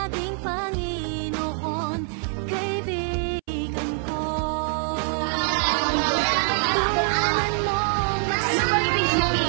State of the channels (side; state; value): left; silent; 62 dB below the other